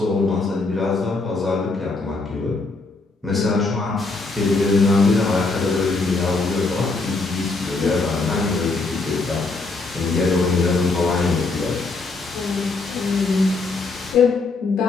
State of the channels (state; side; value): quieter; right; 3.7 dB